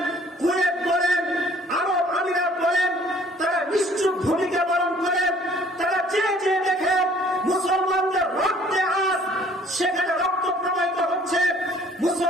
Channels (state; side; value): normal; both; correlation 0.56